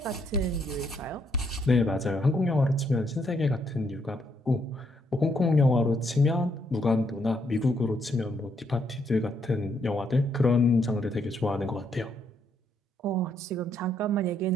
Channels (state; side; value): normal; both; correlation 0.74